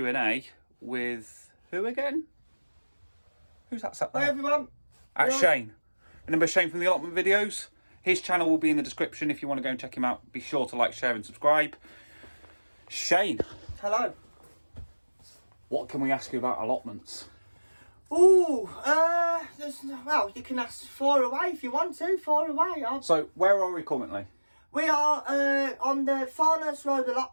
with who again? Who's that sat there? Hi everyone. Shane. Remember Shane from the Allotment videos? His channel will be in the description if you want to go and check him out. Be sure to like, share and subscribe. Shane. Hello. What can we ask you about allotments? Well, you can ask far away if you want to, far away. So, where are we currently? We are on the Farnhurst Road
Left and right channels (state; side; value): inverted; both; correlation -1.00